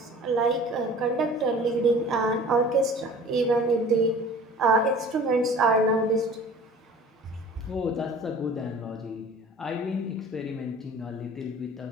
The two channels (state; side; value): normal; both; correlation 0.45